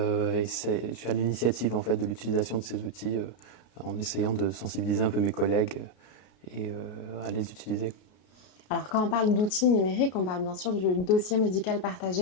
suis à l'initiative en fait de l'utilisation de ces outils en essayant de sensibiliser un peu mes collègues et à les utiliser. Alors quand on parle d'outils numériques, on parle bien sûr du dossier médical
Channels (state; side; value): late; right; 33 ms